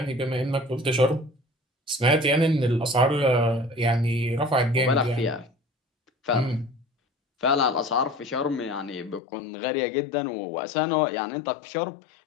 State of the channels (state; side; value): drops out; right; at 9.2 s